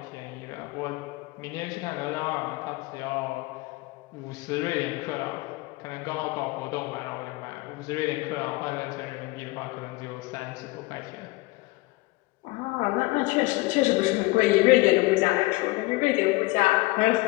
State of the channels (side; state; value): right; quieter; 22.1 dB